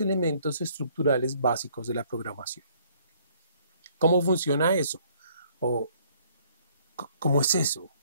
elementos estructurales básicos de la programación. ¿Cómo funciona eso? ¿O cómo es eso?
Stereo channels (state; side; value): inverted; both; correlation -0.62